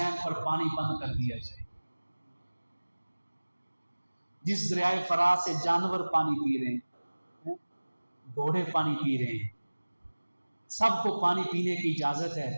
پر پانی بند کر دیا جائے۔ جس دریائے فرات سے جانور پانی پی رہے ہیں، گھوڑے پانی پی رہے ہیں، سب کو پانی پینے کی اجازت ہے،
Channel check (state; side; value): inverted; both; correlation -1.00